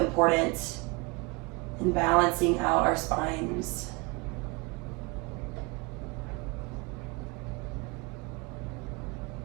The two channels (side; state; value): left; quieter; 27.1 dB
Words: in balancing out our spines.